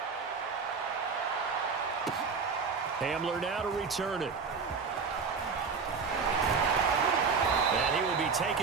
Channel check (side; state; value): left; quieter; 5.3 dB